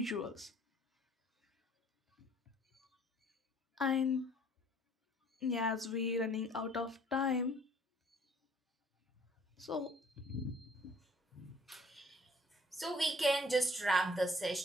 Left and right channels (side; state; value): both; normal; correlation 0.57